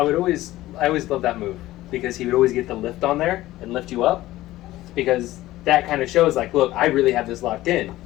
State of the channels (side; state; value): right; quieter; 16.3 dB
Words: love that move because he would always get the lift on there and lift you up, because that kind of shows like, look, I really have this locked in.